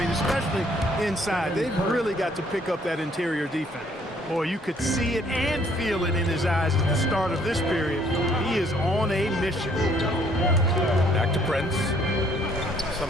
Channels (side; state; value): both; normal; correlation 0.63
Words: especially inside. They've really got to pick up that interior defense. Boy, you could see it and feel it in his eyes at the start of this period. He is on a mission. Back to Prince.